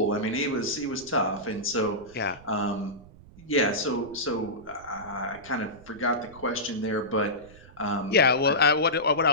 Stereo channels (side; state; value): right; noise; rumble, 21 dB below the sound